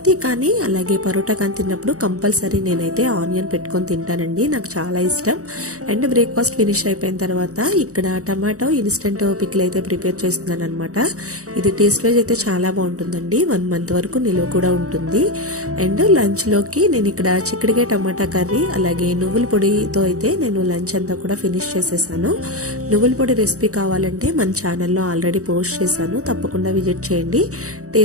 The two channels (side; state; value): left; late; 0.65 ms